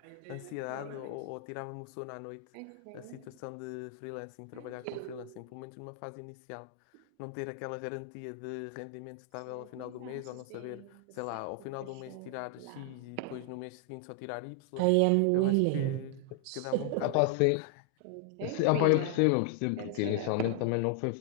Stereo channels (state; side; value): different; both; correlation 0.00